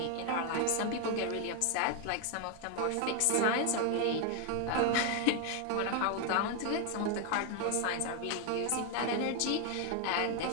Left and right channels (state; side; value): different; both; correlation 0.01